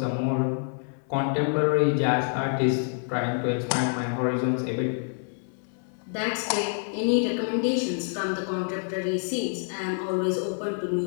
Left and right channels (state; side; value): silent; right; 60 dB below the other